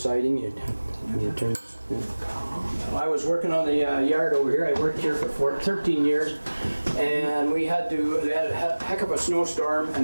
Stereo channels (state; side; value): inverted; both; correlation -1.00